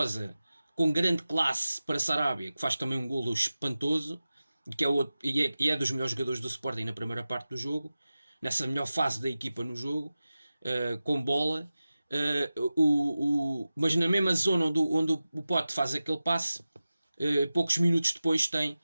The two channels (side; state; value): both; inverted; correlation -0.95